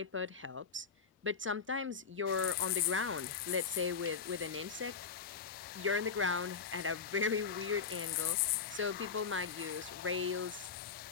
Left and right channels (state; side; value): quieter; right; 5.8 dB